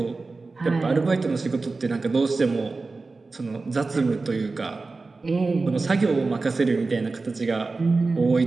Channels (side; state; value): left; quieter; 3.8 dB